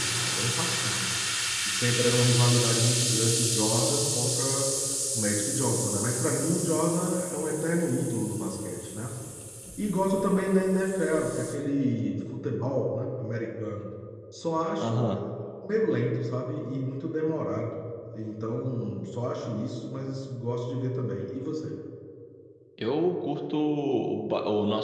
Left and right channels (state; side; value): identical; both; correlation 1.00